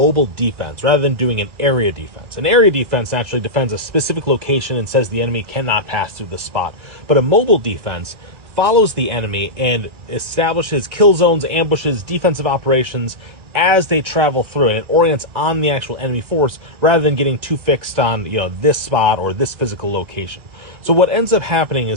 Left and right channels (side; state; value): left; late; 1.9 ms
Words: defense rather than doing an area defense. An area defense actually defends a specific location and says the enemy cannot pass through the spot. But a mobile defense follows the enemy and establishes kill zones, ambushes, defensive operations as they travel through, and it orients on the actual enemy force rather than getting too fixed on, this spot or this physical location. So what ends up happening